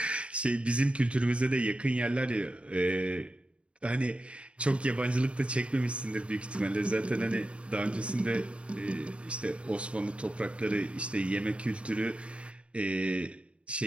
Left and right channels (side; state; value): left; late; 0.059 ms